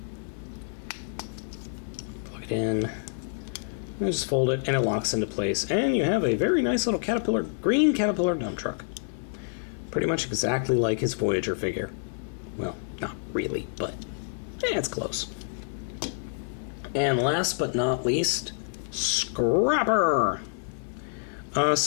plug it in, and just fold it, and it locks into place. And you have a very nice little green Caterpillar dump truck. Pretty much exactly like his Voyager figure. Well, not really, but it's close. And last but not least, Scrapper!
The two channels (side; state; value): right; silent; 60 dB below the other